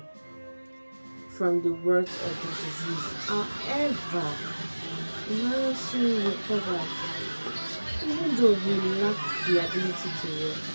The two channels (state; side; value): inverted; both; correlation -1.00